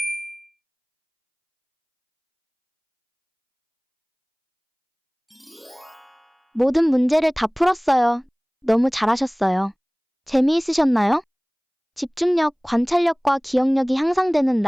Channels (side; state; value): both; identical; correlation 1.00